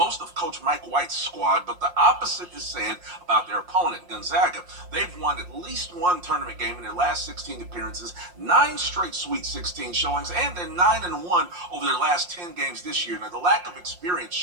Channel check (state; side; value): late; left; 5.6 ms